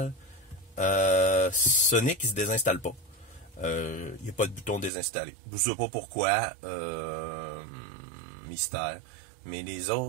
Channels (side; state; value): left; drops out; at 4.9 s